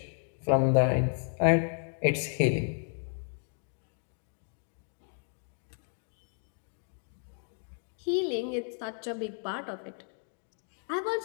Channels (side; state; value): right; silent; 56 dB below the other